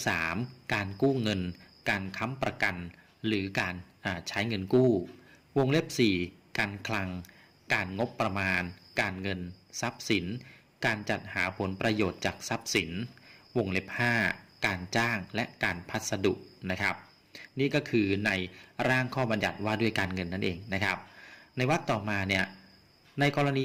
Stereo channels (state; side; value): identical; both; correlation 1.00